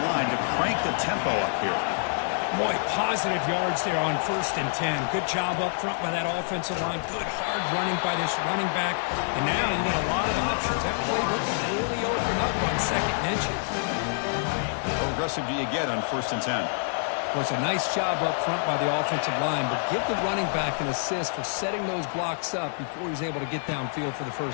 line to crank the tempo up here. Boy, positive yards there on 1st and 10. Good job up front by that offensive line. Good hard running by this running back. And now you got a lot of options. That playbook can really open up on 2nd and inches. How aggressive do you get on 1st and 10? Well, it's a nice job up front by the offensive line, but give the running back an assist for setting those blocks up before he's able to get downfield for the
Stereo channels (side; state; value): right; silent; digital silence